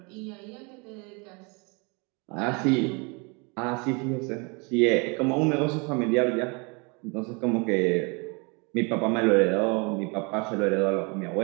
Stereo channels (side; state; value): left; quieter; 31.1 dB